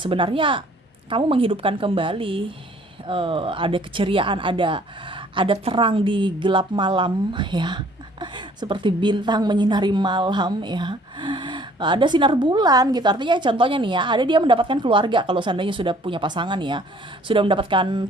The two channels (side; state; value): both; normal; correlation 0.57